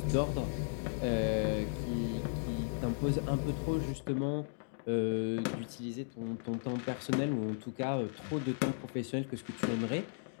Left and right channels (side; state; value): right; silent; digital silence